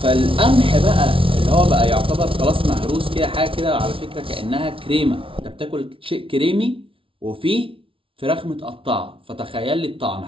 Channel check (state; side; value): late; left; 0.25 ms